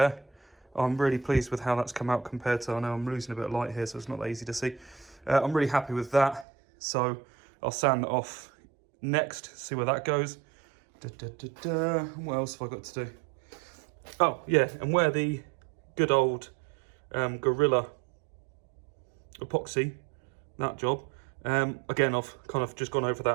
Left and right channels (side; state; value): left; drops out; at 6.5 s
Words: I'm really pleased with how that's come out compared to, I know I'm losing a bit of light here, so it's not that easy to see. I'm really happy with that, so I'll sand that off next, see where that goes. What else have I got to do? Oh yeah, and where the good old Gorilla epoxy, that job, again I've kind of just gone over